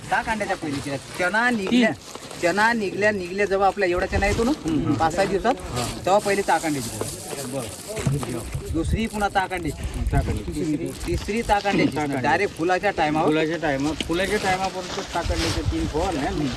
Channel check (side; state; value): both; identical; correlation 1.00